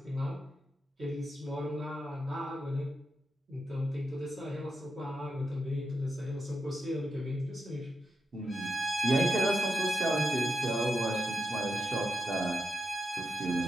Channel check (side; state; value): both; normal; correlation 0.86